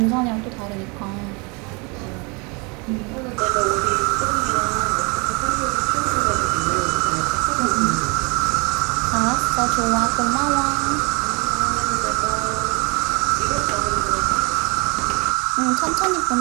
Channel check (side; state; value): left; quieter; 30.3 dB